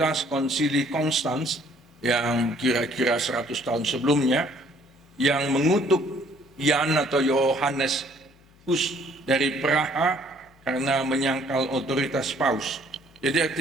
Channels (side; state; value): left; noise; hum, 30 dB below the sound